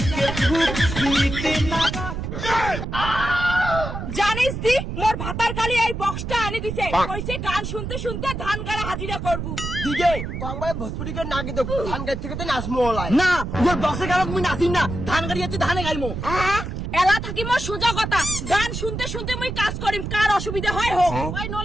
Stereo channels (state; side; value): noise; right; rumble, 5 dB below the sound